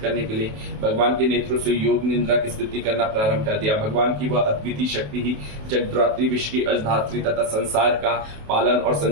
करने के लिए भगवान के नेत्रों से योग निद्रा की स्थिति करना प्रारंभ कर दिया। भगवान की वह अद्वितीय शक्ति ही जगद्धात्री, विश्व की अजधात्री तथा संसार का पालन और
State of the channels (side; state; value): left; late; 28 ms